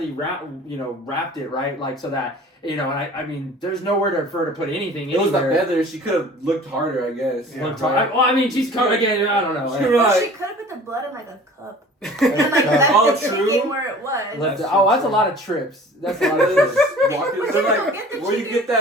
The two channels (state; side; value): normal; both; correlation 0.45